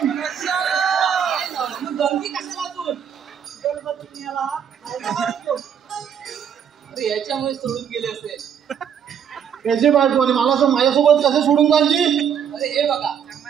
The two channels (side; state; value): left; quieter; 8.2 dB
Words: गंगी कशाला तू? गणपती याला अरे याच्यामुळे सोडून गेले असेल. त्याची बायको आणि मला असं माझ्यासोबत कसं सोडून जायची? अरे हे बघा,